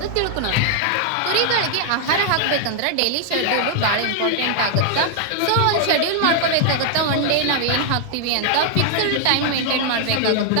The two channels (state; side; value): different; both; correlation 0.00